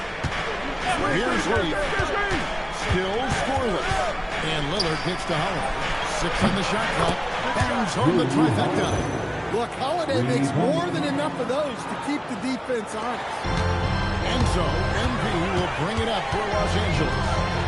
Here's Reed. Still scoreless. And Lillard gets to Holiday. 6 on the shot clock. Bangs home the trifecta. Look, Holiday makes more than enough of those to keep the defense honest. And so, MP will bring it up for Los Angeles.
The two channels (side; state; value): both; identical; correlation 1.00